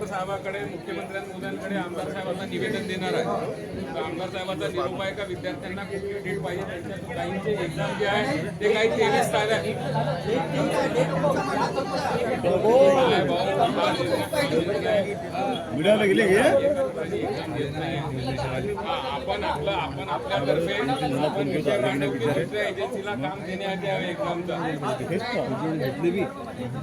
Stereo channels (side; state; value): both; identical; correlation 1.00